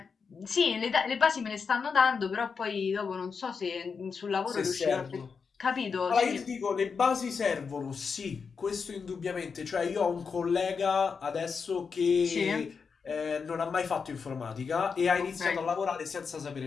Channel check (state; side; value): quieter; right; 5.6 dB